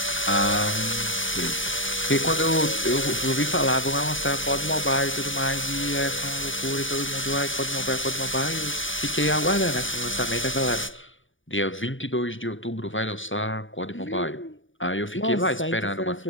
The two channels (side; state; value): right; late; 0.57 ms